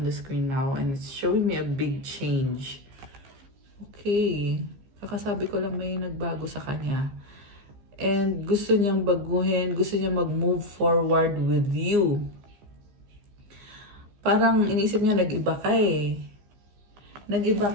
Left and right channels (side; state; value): left; late; 15 ms